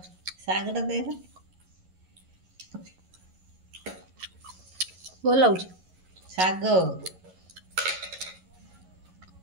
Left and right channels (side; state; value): left; late; 11 ms